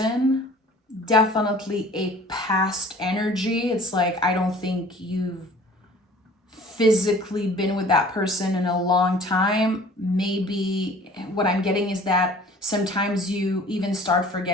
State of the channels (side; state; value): both; normal; correlation 0.49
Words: definitely a past energy. It's like, I don't think you've physically been with that person in a long time. Maybe what I'm getting is that sometimes you even start